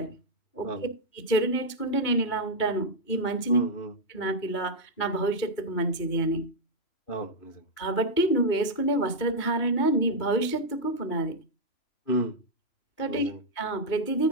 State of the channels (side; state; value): right; late; 2.4 ms